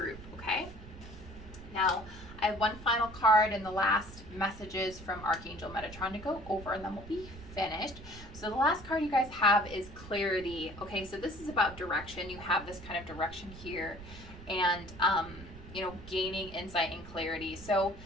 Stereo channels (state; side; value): noise; right; rumble, 15 dB below the sound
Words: Okay, now I have one final card and the last messages from Archangel Metatron to go over, and then we'll be finished. So the last card you guys have is clarity. Okay, so this is about direction. You have this kind of direction here, and gaining insight and clarity. So